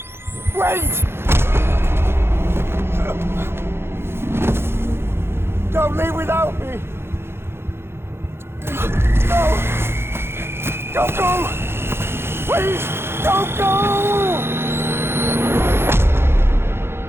Wait! Don't leave without me! No! Don't go! Please, don't go!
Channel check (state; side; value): late; left; 0.12 ms